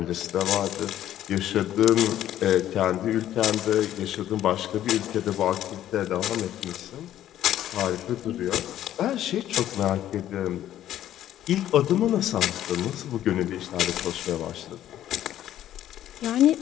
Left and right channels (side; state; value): right; quieter; 12.1 dB